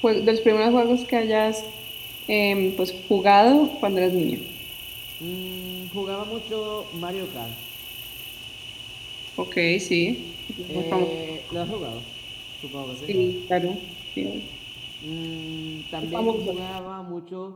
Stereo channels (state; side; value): identical; both; correlation 1.00